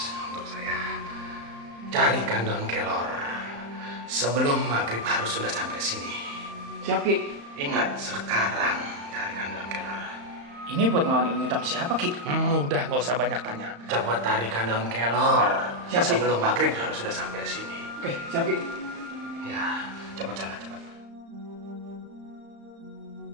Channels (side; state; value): left; late; 35 ms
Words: untuk saya. Carikan daun kelor. Sebelum maghrib harus sudah sampai sini. Siap Ki. Ingat, sekarang carikan daun kelor. Ini buat ngelawan ilmu hitam siapa Ki? Udah, nggak usah banyak tanya. Coba tarikan daun kelor. Siap, Ki. Sebelum maghrib harus sudah sampai sini. Oke, siap Ki. Ya, cepat sana, cepat.